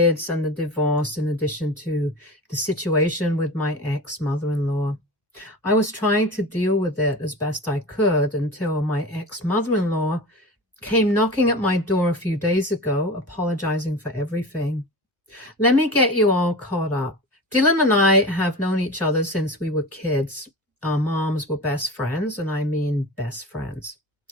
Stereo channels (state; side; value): normal; both; correlation 0.31